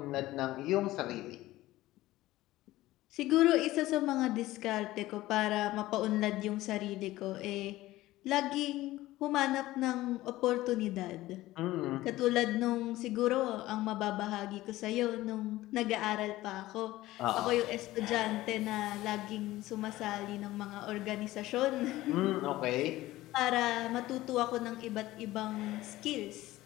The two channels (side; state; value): right; quieter; 16.8 dB